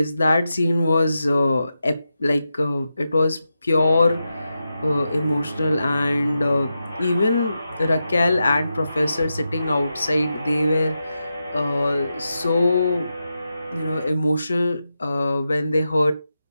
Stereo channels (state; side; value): inverted; both; correlation -0.89